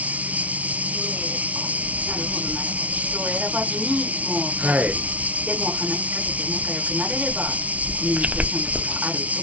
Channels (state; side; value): late; left; 0.068 ms